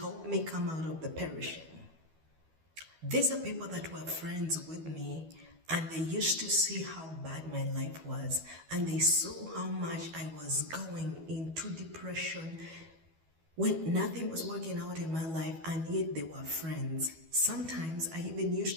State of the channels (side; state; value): left; late; 12 ms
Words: me come out of the perishing. These are people that were friends with me, and they used to see how bad my life was, and they saw how much I was going into depression when nothing was working out in my life, and yet they were friends. Sometimes I even